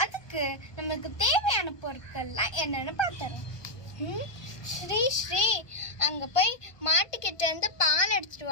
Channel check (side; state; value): right; late; 1.2 ms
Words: அதுக்கு நமக்கு தேவையான பொருட்கள்லாம் என்னன்னு பார்த்தறோம். ஸ்ரீ அங்க போய் மாட்டுக்கிட்ட இருந்து பால் எடுத்துட்டு